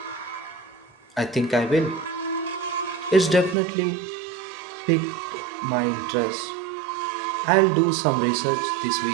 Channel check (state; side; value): drops out; left; at 3.6 s